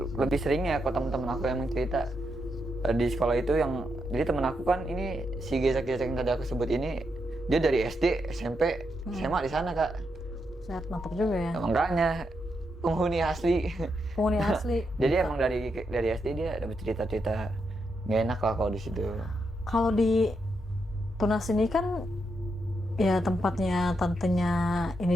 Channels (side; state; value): both; normal; correlation 0.82